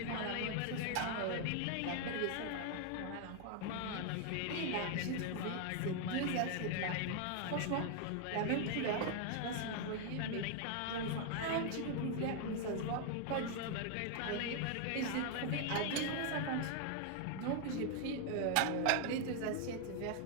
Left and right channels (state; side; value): different; both; correlation 0.00